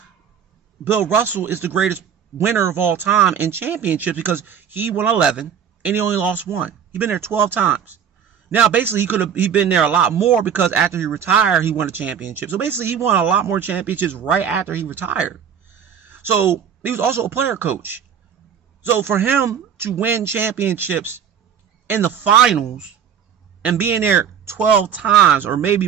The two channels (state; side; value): quieter; left; 8.1 dB